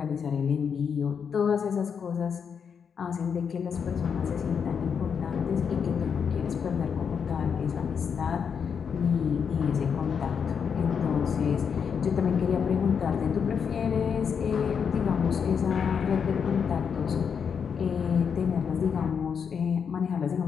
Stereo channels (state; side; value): quieter; right; 6.8 dB